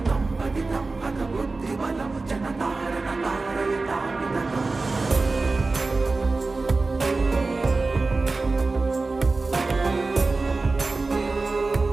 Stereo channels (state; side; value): quieter; left; 3.6 dB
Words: पतितं हत बुद्धिबलं जनतारण तारयतापित